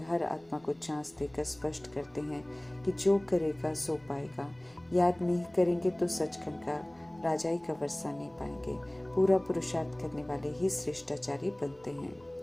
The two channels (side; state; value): right; noise; rumble, 30 dB below the sound